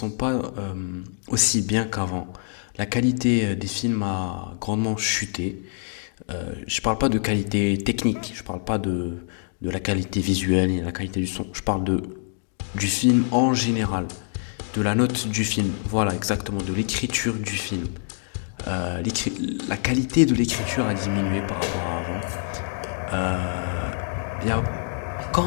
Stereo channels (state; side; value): silent; right; digital silence